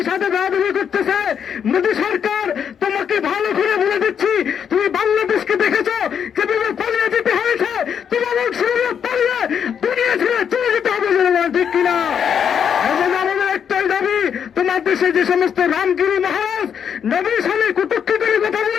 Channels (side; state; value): right; quieter; 7.8 dB